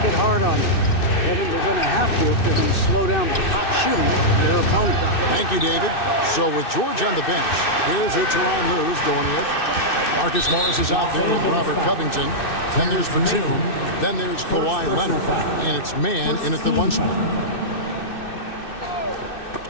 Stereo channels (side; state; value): right; late; 2.6 ms